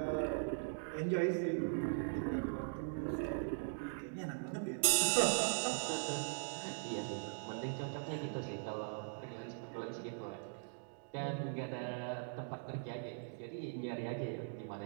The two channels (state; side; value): silent; left; digital silence